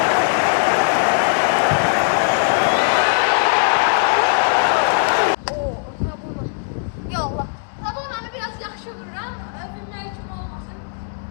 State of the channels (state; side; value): silent; right; 66 dB below the other